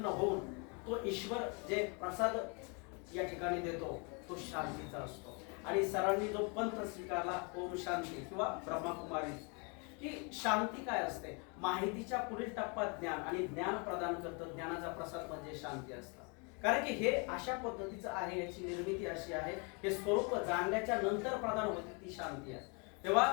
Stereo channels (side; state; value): right; quieter; 33.8 dB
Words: होऊन तो ईश्वर जे प्रसाद या ठिकाणी देतो तो शांतीचा असतो. आणि सरांनी जो पंथ स्वीकारला ओम शांती किंवा ब्रह्मकुमारी, की शांती काय असते, माहितीच्या पुढील टप्पा ज्ञान, आणि ज्ञान प्रदान करतं. ज्ञानाचा प्रसाद म्हणजे शांती असतं. कारण की हे अशा पद्धतीचं आहे, याची निर्मिती अशी आहे, हे स्वरूप जाणल्याच्या नंतर प्रदान होते ती शांती आहे. तेव्हा